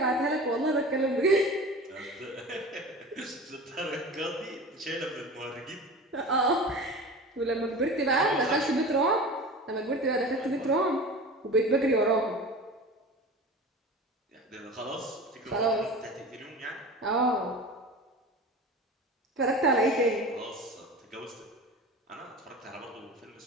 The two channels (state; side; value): normal; both; correlation 0.34